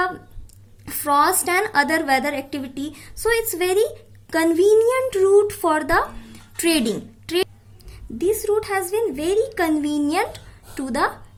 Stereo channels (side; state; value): both; identical; correlation 1.00